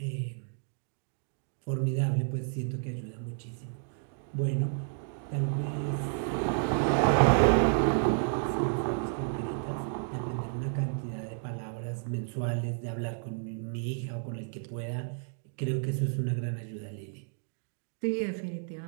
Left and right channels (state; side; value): silent; left; digital silence